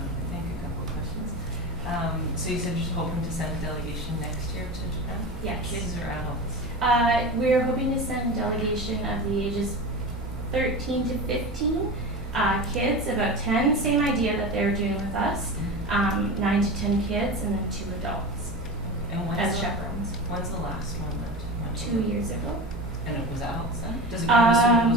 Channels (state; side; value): normal; both; correlation 0.28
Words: questions. So you said you're hoping to send a delegation next year to Japan? Yes. Kids or adults? We're hoping to send a delegation of the ages 13 to 15, kids, about 10, same idea that they're doing with us, 9 to 10 kids, and then 2 adults And as chaperones. when's the last one that went? 2 years ago. And it was adults then? Does it go, I'm assuming it